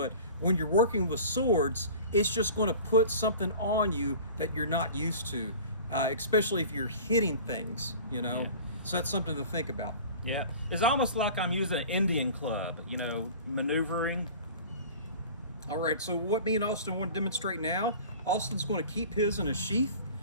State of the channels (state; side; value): inverted; both; correlation -0.40